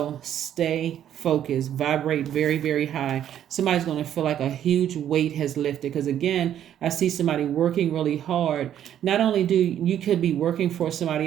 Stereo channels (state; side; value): quieter; left; 10.5 dB